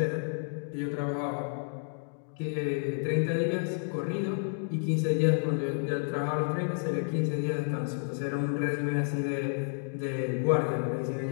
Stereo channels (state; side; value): silent; right; digital silence